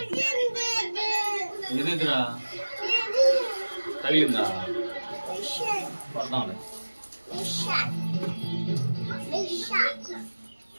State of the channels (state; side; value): inverted; both; correlation -1.00